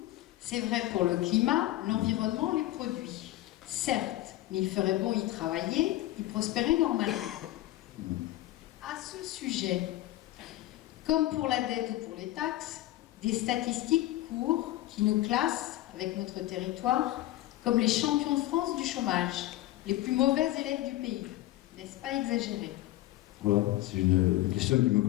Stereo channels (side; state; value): right; quieter; 16.0 dB